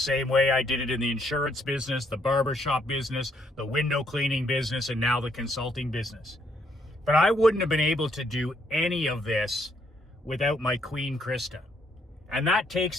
way I did it in the insurance business, the barbershop business, the window cleaning business, and now the consulting business. But I wouldn't have been able to do any of this without my queen, Krista. And that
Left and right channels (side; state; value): both; normal; correlation 0.71